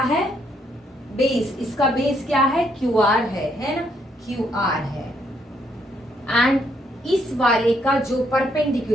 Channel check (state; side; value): normal; both; correlation 0.72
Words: है, बेस, इसका बेस क्या है, QR है ना, QR है, एंड इस वाले का जो